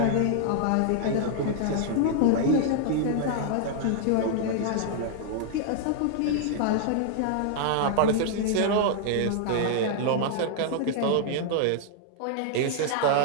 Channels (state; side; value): different; both; correlation -0.01